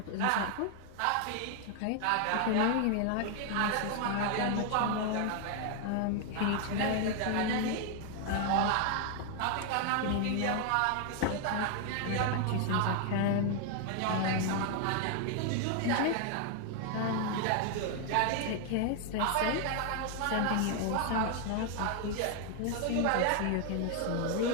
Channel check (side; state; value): both; different; correlation 0.00